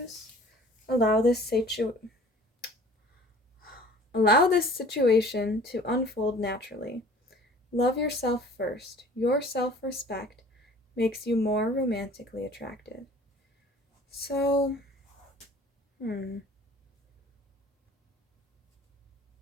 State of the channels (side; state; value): both; normal; correlation 0.49